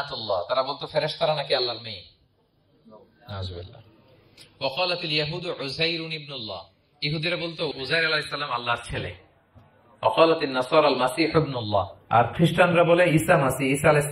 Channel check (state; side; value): identical; both; correlation 1.00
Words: তারা বলতো ফেরেশতারা নাকি আল্লাহর মেয়ে। নাউযুবিল্লাহ। ওয়া ক্বালাতিল ইয়াহুদু উযাইরুন ইবনুল্লাহ, ইহুদিরা বলতো উযাইর আলাইহিস সালাম আল্লাহর ছেলে। ওয়া ক্বালাতিন নাসারা আল মাসীহ ইবনুল্লাহ, আর খ্রিস্টানরা বলে ঈসা মাসীহ, ঈসা আলাইহিস